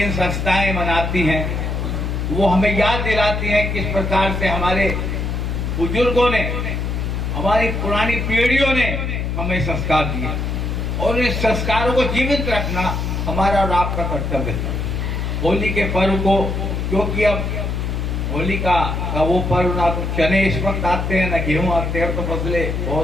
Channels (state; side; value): noise; left; hum, 2 dB below the sound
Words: संस्थाएं मनाती हैं, वो हमें याद दिलाती हैं किस प्रकार से हमारे बुजुर्गों ने, हमारी पुरानी पीढ़ियों ने हमें संस्कार दिए। और इस संस्कारों को जीवित रखना हमारा और आपका कर्तव्य है। होली के पर्व को, क्योंकि अब होली का वो पर्व ना तो चने इस वक्त आते हैं ना गेहूं आते हैं, तो फसलें